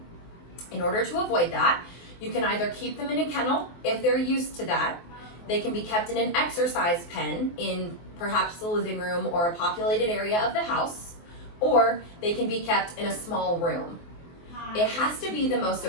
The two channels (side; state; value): right; late; 23 ms